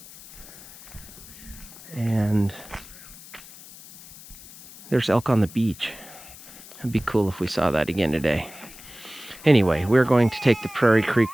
and there's elk on the beach. It'd be cool if we saw that again today. Anyway, we're going to take the Prairie Creek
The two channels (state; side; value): noise; left; hiss, 18 dB below the sound